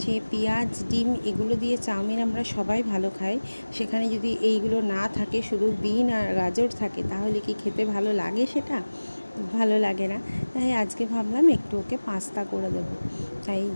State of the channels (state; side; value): inverted; both; correlation -1.00